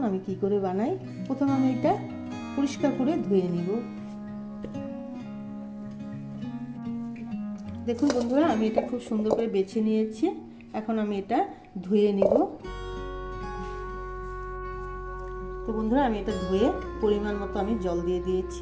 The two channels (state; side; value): identical; both; correlation 1.00